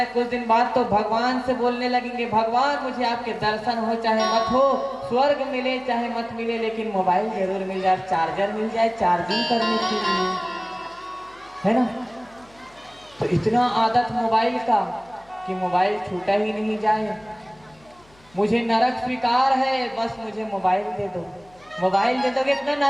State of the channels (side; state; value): left; noise; hum, 29 dB below the sound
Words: कुछ दिन बाद तो भगवान से बोलने लगेंगे, भगवान मुझे आपके दर्शन हो चाहे मत हो, स्वर्ग मिले चाहे मत मिले, लेकिन मोबाइल जरूर मिल जाए, चार्जर मिल जाए चार्जिंग करने के लिए, है ना। तो इतना आदत मोबाइल का कि मोबाइल छूटा ही नहीं जाए। मुझे नरक स्वीकार है, बस मुझे मोबाइल दे दो। मोबाइल दे दोगे इतना